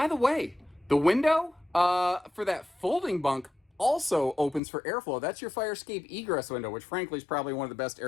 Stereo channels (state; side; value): drops out; right; at 4.6 s